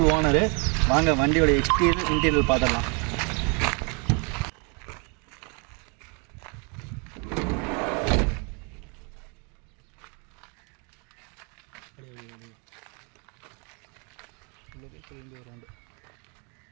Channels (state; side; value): quieter; left; 34.3 dB